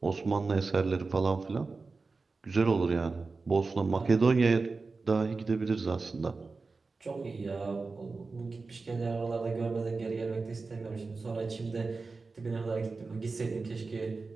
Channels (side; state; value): left; quieter; 4.0 dB